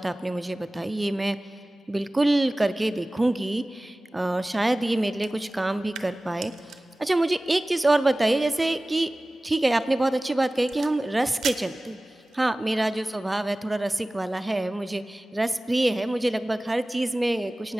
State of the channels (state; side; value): normal; both; correlation 0.98